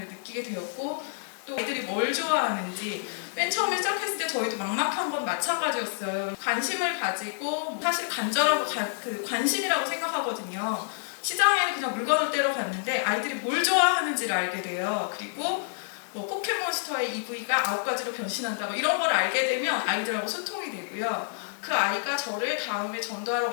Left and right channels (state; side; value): silent; right; digital silence